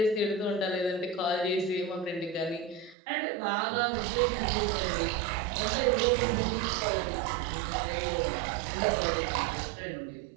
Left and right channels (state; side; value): drops out; left; at 3.0 s